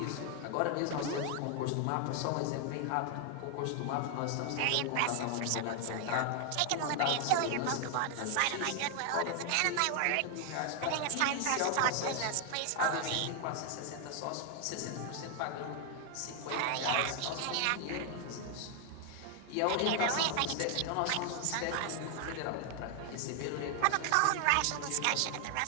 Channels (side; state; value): both; different; correlation 0.00